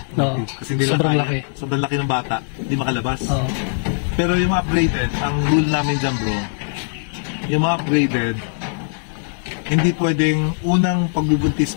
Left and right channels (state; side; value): silent; right; digital silence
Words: No. Kasi hindi sobrang laki. Sobrang laki ng bata, hindi makalabas. Oh. Pero yung mga upgraded, ang rule namin dyan bro, yung mga upgraded, hindi pwedeng unang pagbubuntis